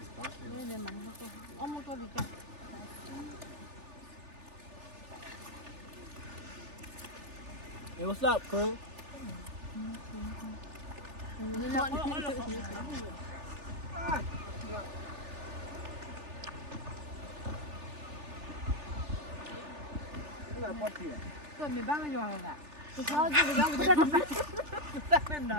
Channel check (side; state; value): left; late; 3.4 ms